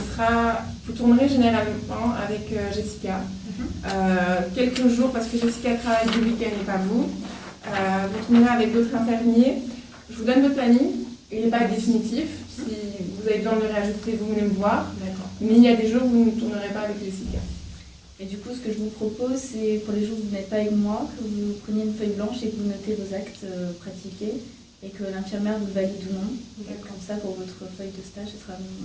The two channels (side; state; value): both; identical; correlation 1.00